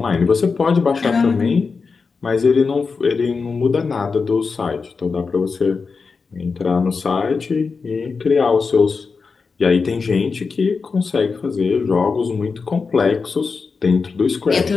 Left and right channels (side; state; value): right; quieter; 4.8 dB